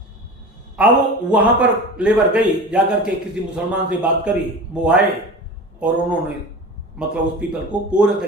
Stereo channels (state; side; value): normal; both; correlation 0.33